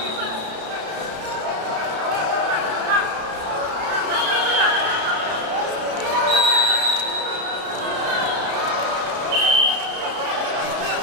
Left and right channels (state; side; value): late; left; 32 ms